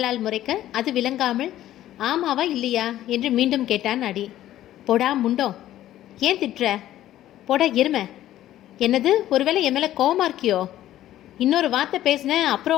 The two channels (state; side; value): quieter; right; 13.3 dB